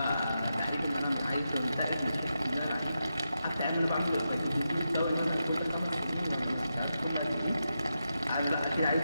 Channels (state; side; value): inverted; both; correlation -0.87